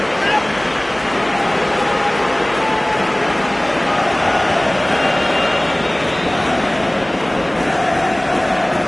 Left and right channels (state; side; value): noise; right; hum, 26 dB below the sound